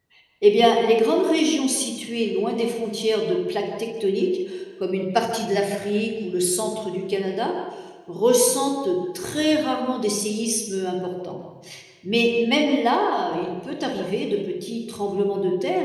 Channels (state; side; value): identical; both; correlation 1.00